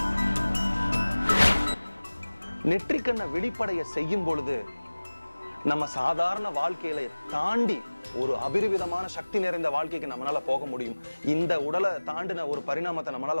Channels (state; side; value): inverted; both; correlation -1.00